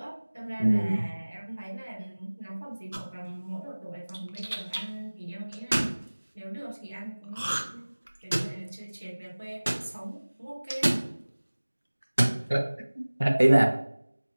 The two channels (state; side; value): inverted; both; correlation -1.00